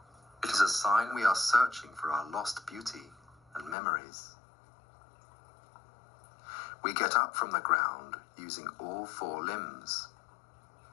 It is a sign we are searching for our lost beauty and memories. We get up from the ground using all four limbs,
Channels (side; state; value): right; drops out; at 3.8 s